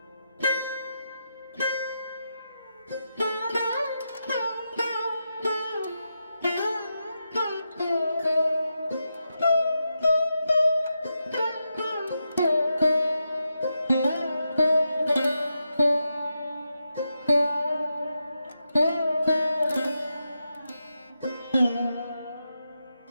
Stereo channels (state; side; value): inverted; both; correlation -0.86